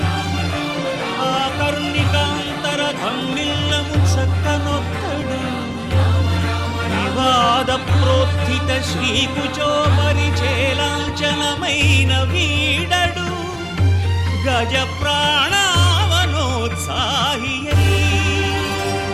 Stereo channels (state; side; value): noise; left; hum, 25 dB below the sound